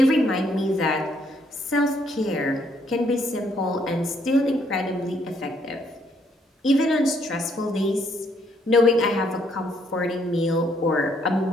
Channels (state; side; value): normal; both; correlation 0.70